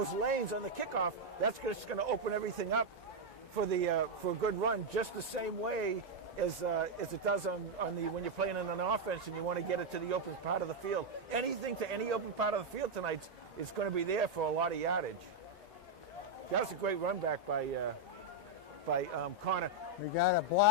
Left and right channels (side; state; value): both; normal; correlation 0.00